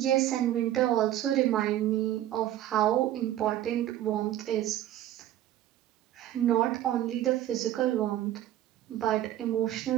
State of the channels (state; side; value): quieter; left; 12.9 dB